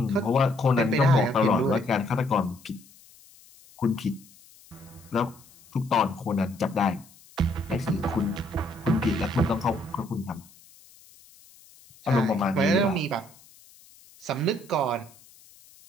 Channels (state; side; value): noise; left; hiss, 25 dB below the sound